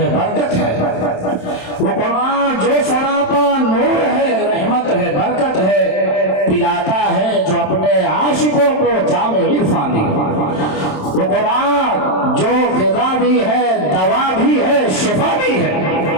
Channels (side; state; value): right; late; 27 ms